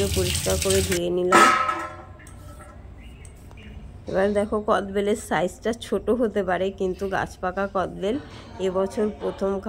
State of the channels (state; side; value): identical; both; correlation 1.00